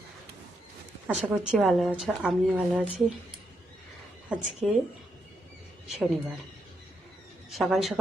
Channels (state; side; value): normal; both; correlation 0.80